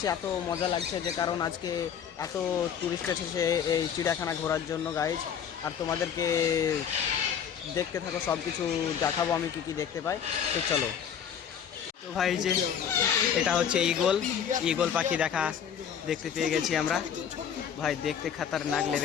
এত মজা লাগছে যে কারণ আজকে এত টুরিস্ট এসেছে এই চিড়িয়াখানা ঘোরার জন্য গাইজ। আর তোমাদেরকে দেখতে থাকো, সব কিছু দেখাবো আমি কী কী দেখতে পাই। তো চলো। তো ভাই, যে এটা হচ্ছে ঈগল পাখি দেখতে পেয়ে গেছি আমরা। ভাই দেখতে খতরনাক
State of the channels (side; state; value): right; quieter; 8.2 dB